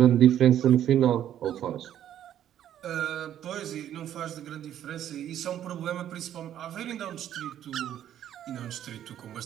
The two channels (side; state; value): left; quieter; 10.9 dB